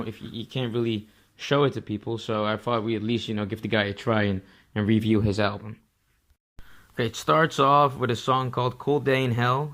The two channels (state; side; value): identical; both; correlation 1.00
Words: can't really show it to people. So I thought we at least give the guy a try and review his album. Okay, it starts off with a song called "Cold Day in Hell,"